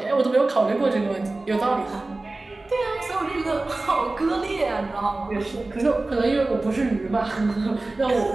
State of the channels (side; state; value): left; quieter; 3.1 dB